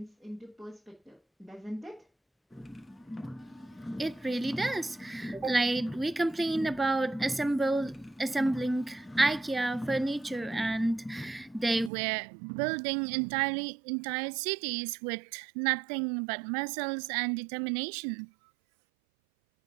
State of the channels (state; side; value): drops out; left; at 11.9 s